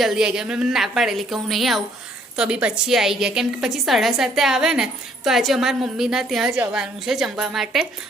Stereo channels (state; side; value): normal; both; correlation 0.64